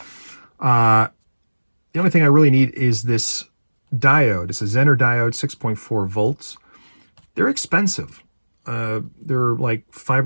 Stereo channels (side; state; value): both; inverted; correlation -1.00